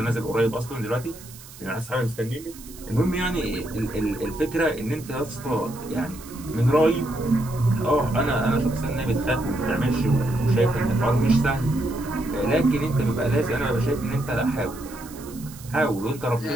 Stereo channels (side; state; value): right; noise; hiss, 18 dB below the sound